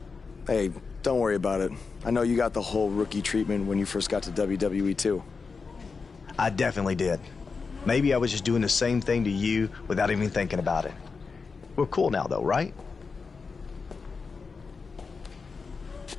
Hey, don't worry about it. I know you got the whole rookie treatment when you first got to WWE, too. I definitely did. Maybe I was just doing the same thing to you without even thinking about it. We're cool now, though, right?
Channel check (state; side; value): quieter; right; 4.8 dB